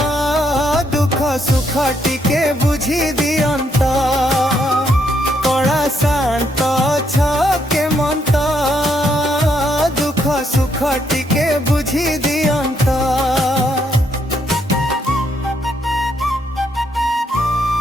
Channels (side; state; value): both; normal; correlation 0.74